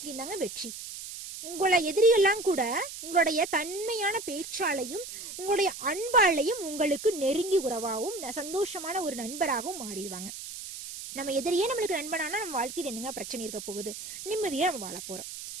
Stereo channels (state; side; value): noise; right; hiss, 10 dB below the sound